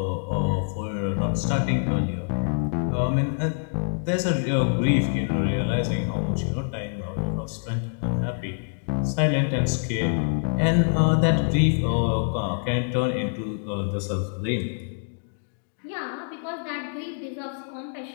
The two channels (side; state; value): right; silent; digital silence